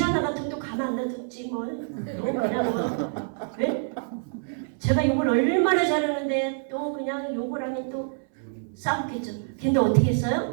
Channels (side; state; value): left; silent; 61 dB below the other